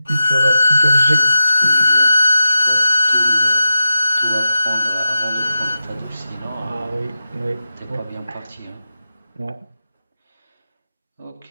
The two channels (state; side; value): inverted; both; correlation -0.88